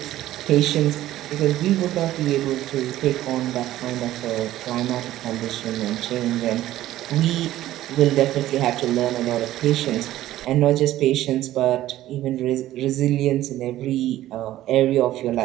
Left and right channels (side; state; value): left; quieter; 14.3 dB